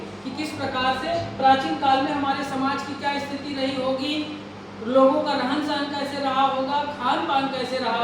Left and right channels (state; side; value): identical; both; correlation 1.00